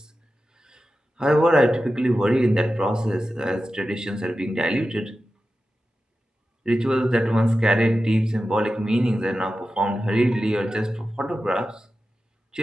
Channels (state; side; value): normal; both; correlation 0.93